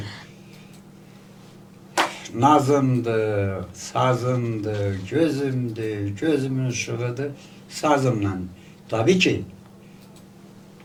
nazımdır, sazımdır, gözümdür, gözümün ışığıdır, sazımla. Tabii ki,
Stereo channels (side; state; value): both; identical; correlation 1.00